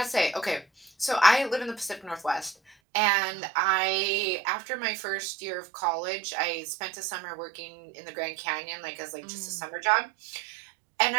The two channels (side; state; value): left; drops out; at 2.8 s